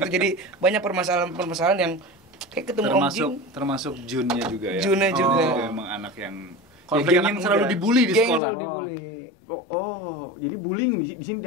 jadi banyak permasalahan yang kayak ketemu Om Jin. Termasuk Junnya juga ya. Junnya juga. Emang anak yang Konflik geng yang anak selalu muda. dibully di Geng sekolah. selalu dibully. Jadi bullying di sini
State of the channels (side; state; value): right; drops out; at 8.4 s